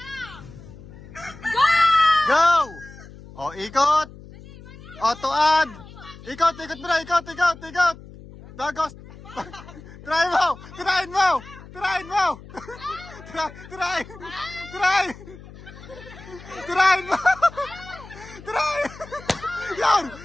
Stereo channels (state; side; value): noise; left; hum, 18 dB below the sound